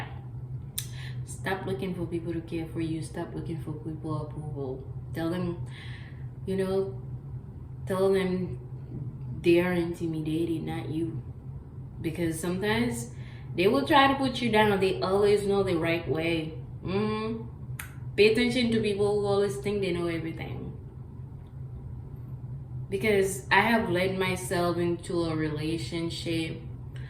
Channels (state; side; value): identical; both; correlation 1.00